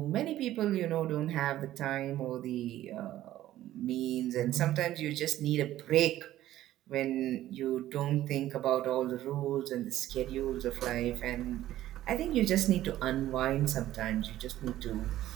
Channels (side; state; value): left; quieter; 13.8 dB